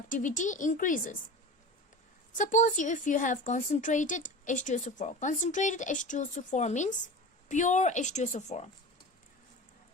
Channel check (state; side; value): normal; both; correlation 0.32